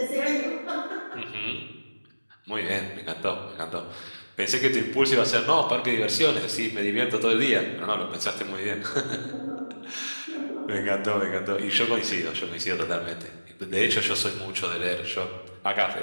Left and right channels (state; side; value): inverted; both; correlation -1.00